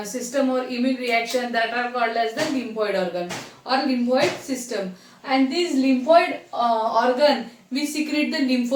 or immune reaction that are called as the lymphoid organ or lymphoid system. And this lymphoid organ we secrete the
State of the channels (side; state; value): both; identical; correlation 1.00